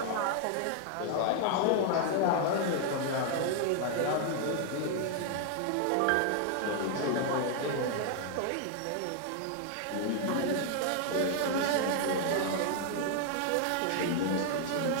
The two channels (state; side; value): different; both; correlation 0.00